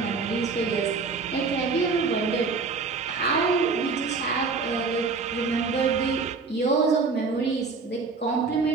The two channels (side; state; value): left; quieter; 4.5 dB